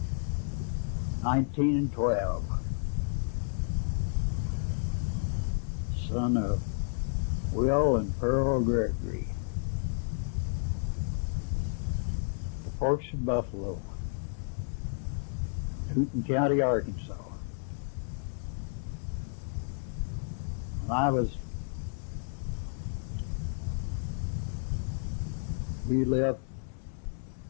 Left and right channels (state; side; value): silent; right; digital silence